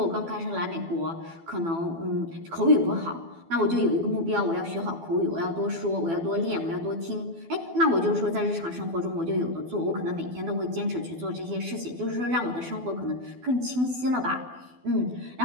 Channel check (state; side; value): late; left; 12 ms